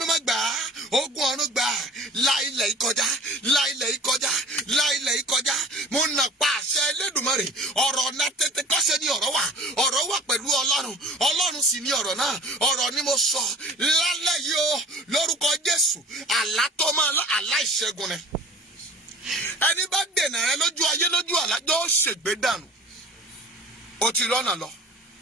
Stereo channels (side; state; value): both; normal; correlation 0.43